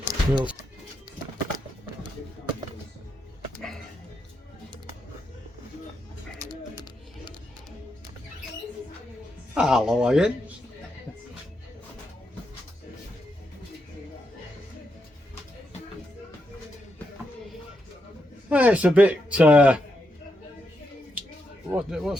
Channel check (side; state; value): both; normal; correlation 0.82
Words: Hello again. It's a bit,